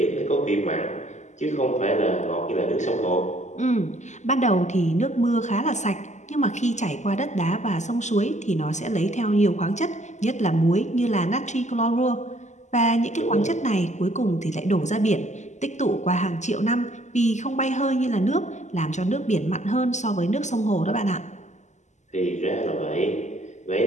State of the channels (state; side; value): late; right; 0.34 ms